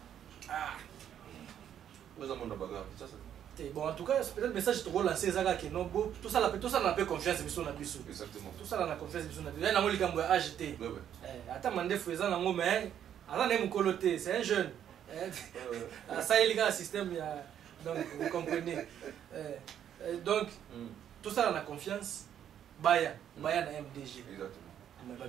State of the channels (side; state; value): left; quieter; 9.8 dB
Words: Ah. Vous avez mon bagarre. Bon, en tout cas, peut-être le message te relancer ça que non tout ça n'a pas confiance bisou na bisou. Exactement. Tout ça n'a confiance bisou na bisou. Il y a un likambo acheté. Attends mandé faisant nango mais ala ne mukoloté, c'est un jeune. Ça il y a un système donc vous comprenez. Donc tout ça on a confiance. Baya na MDG. Exactement. Mais